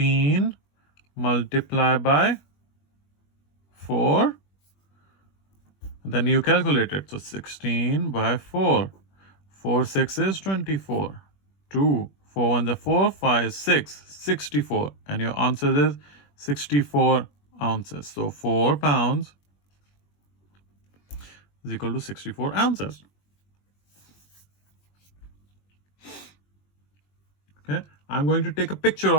multiplied by 4. Then you calculate it. So 16 by 4. 4 6 is 24. 2 4 1 is 4, 5 6, 64. And your answer is 64 ounces. So 4 pounds is equal to 64 ounces. Okay, I'm going to take a picture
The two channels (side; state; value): right; late; 21 ms